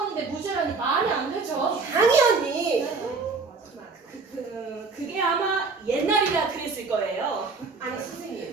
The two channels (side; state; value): left; quieter; 4.3 dB